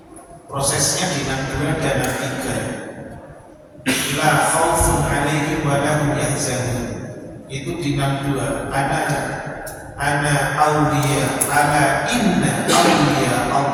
Prosesnya di 62 dan 63. La khaufun 'alaihim wa lahum yahzanun. Itu di 62. Ana awliya ala inna awliya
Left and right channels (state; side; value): identical; both; correlation 1.00